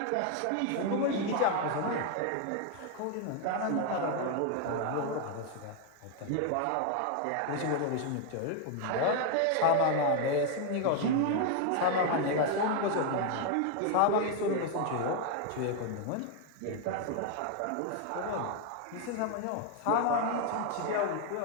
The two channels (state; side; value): different; both; correlation 0.01